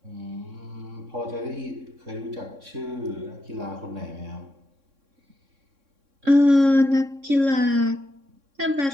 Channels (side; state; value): left; late; 3.6 ms